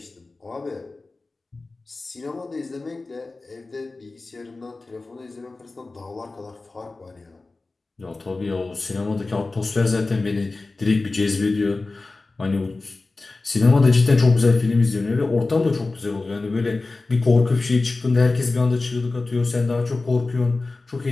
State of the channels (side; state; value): right; quieter; 3.5 dB